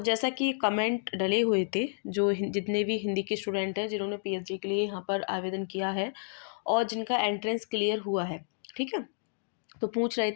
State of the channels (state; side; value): silent; right; digital silence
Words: कि कमेंट डले हुए थे, जो जितने भी हिंदी के स्टूडेंट हैं जिन्होंने पीएचडी के लिए यहाँ पर आवेदन किया है और जिनका एंट्रेंस क्लियर हुआ है, ठीक है, तो पूछ रहे